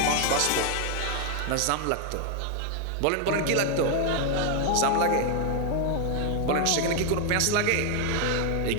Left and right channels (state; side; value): different; both; correlation 0.00